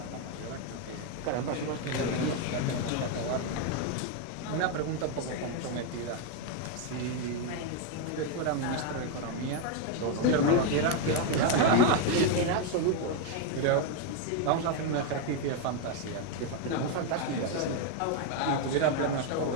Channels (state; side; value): different; both; correlation 0.01